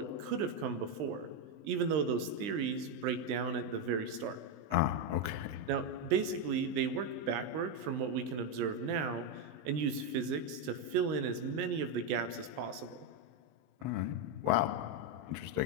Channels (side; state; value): left; late; 20 ms